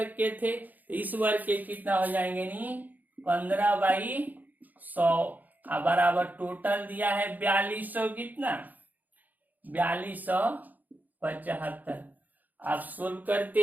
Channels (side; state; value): left; late; 0.083 ms